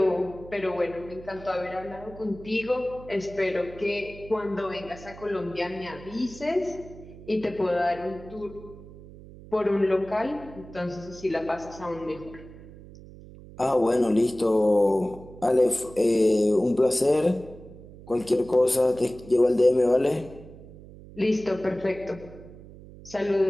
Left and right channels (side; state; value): right; noise; hum, 18 dB below the sound